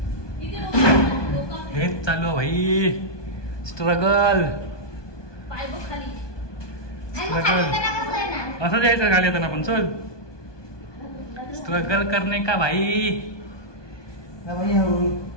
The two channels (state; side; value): late; right; 1.2 ms